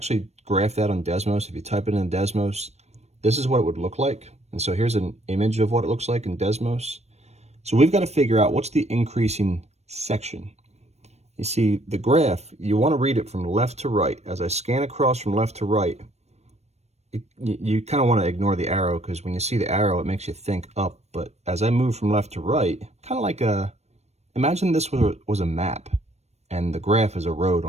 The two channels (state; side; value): late; left; 0.31 ms